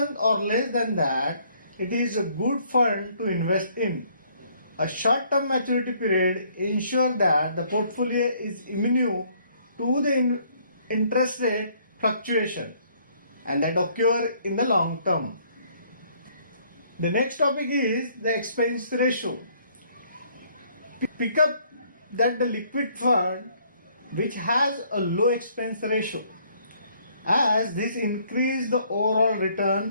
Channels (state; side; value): inverted; both; correlation -0.64